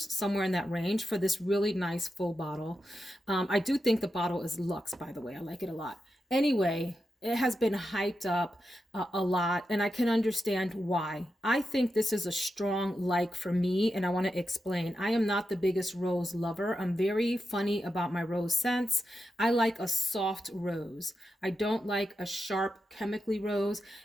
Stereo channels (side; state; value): both; normal; correlation 0.88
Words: in that range for this really nice full bottle. I do think the bottle is luxe, by the way. I like it a lot. Anyway, it has been hyped up a lot, and I can understand why. I think this is a strong like for me, and I want to explain. I am not the biggest rose lover. I'm very funny about my rose scents. I like a soft rose. I don't like a sharp chemically rose,